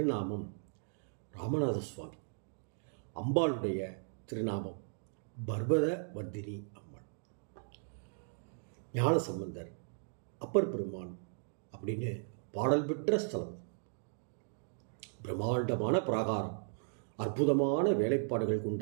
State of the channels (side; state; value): left; silent; digital silence